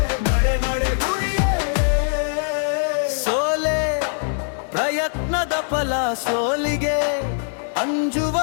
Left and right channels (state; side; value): silent; right; digital silence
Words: ನಡೆ ನಡೆ ಗುರಿಯೆಡೆ. ಸೋಲೆ ಪ್ರಯತ್ನದ ಫಲ ಸೋಲಿಗೆ